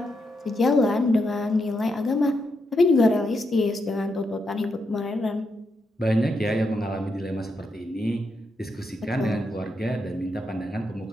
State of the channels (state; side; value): normal; both; correlation 0.82